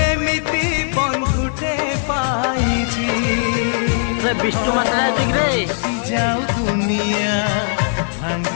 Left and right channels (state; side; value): silent; right; digital silence